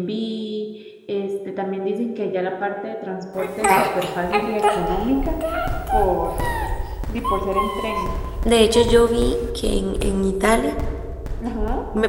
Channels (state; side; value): identical; both; correlation 1.00